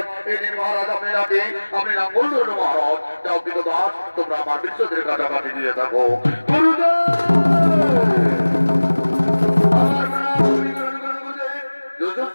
এই দিন মহারাজ আপনি নাকি আপনি নাম বললেন মহারাজ। যাও কিন্তু দাস, তোমরা আমার বিজোদের কাটাকাটি দিয়ে থাকো।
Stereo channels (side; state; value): both; inverted; correlation -1.00